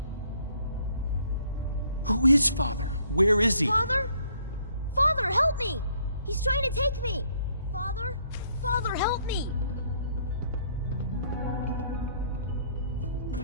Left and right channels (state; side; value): inverted; both; correlation -0.65